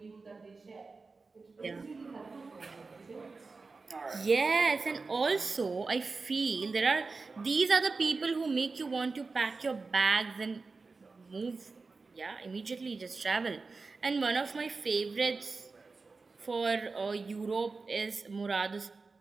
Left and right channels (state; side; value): quieter; left; 4.1 dB